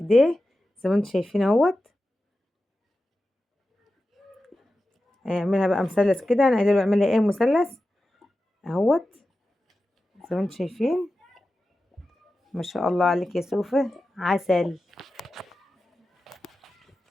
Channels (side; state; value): both; normal; correlation 0.93